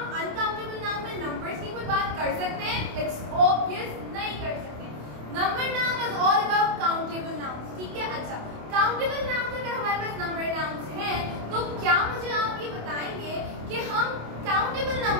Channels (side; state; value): left; late; 27 ms